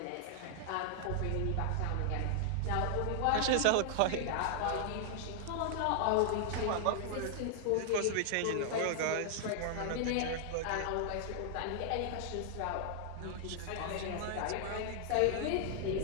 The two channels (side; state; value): both; different; correlation -0.01